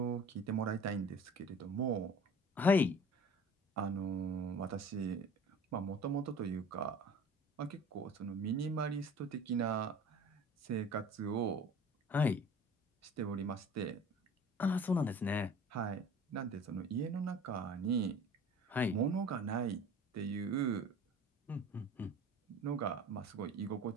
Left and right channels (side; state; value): both; normal; correlation 0.43